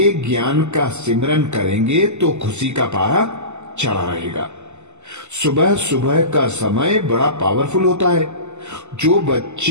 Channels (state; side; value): late; left; 0.83 ms